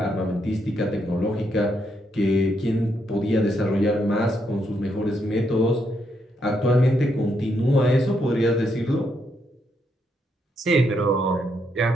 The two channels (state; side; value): normal; both; correlation 0.78